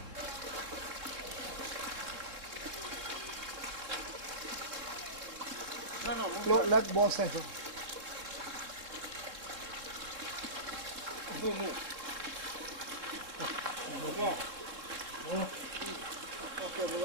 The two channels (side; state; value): left; late; 3.7 ms